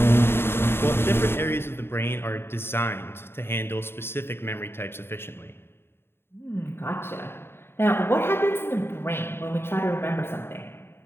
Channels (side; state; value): right; late; 0.11 ms